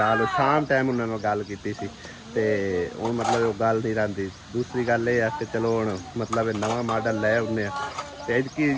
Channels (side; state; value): both; identical; correlation 1.00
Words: ਸ਼ਾਮ ਟਾਈਮ ਉਹਨਾਂ ਨਾਲ ਗੱਲ ਕੀਤੀ ਸੀ ਤੇ ਹੁਣ ਮਤਲਬ ਉਹ ਗੱਲ ਨਹੀਂ ਰਹਿੰਦੀ ਦੂਸਰੀ ਗੱਲ ਇਹ ਆ ਕਿ ਚਲੋ ਹੁਣ ਮਤਲਬ ਇਹ ਨਵਾਂ ਮਾਡਲ ਲੈ ਆਉਂਦੇ ਆ ਤੇ ਇਸਕੀ